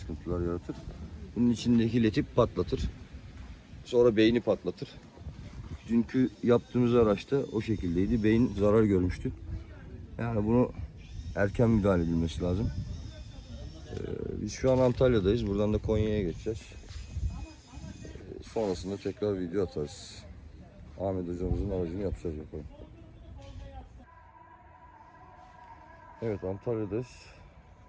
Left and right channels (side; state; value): both; identical; correlation 1.00